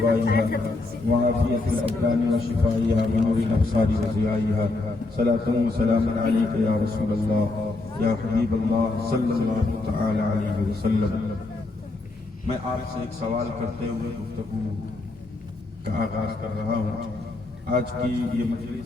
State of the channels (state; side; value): quieter; right; 3.2 dB